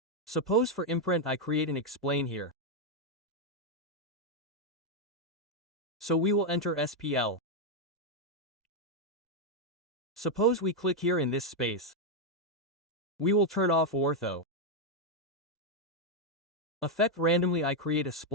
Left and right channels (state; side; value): normal; both; correlation 0.01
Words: Suppose for imprint I create an explain here. So we will enter SPL. Suppose we click here in this space. We will turn off ortho. Effect randomly I create a